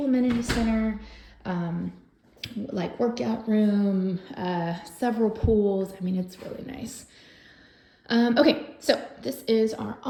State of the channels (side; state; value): both; identical; correlation 1.00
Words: amenity center, like workout room, several pools. I mean, it's really nice. Okay, so this is our